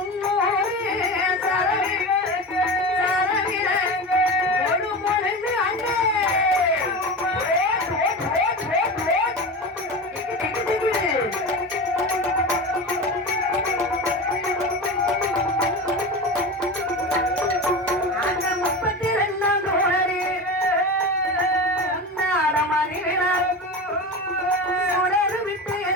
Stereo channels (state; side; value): normal; both; correlation 0.27